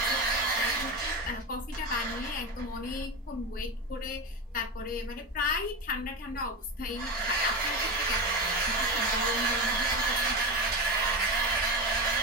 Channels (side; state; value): both; normal; correlation 0.19